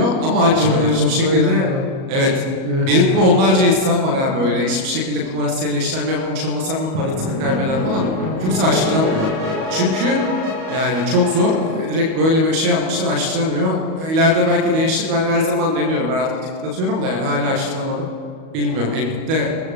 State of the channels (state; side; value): late; left; 37 ms